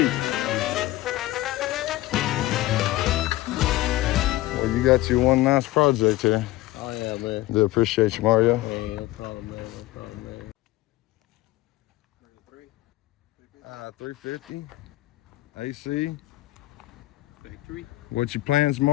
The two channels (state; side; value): quieter; right; 17.3 dB